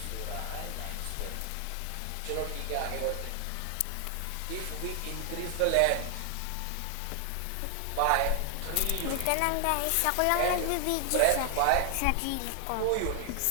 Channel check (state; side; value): different; both; correlation 0.00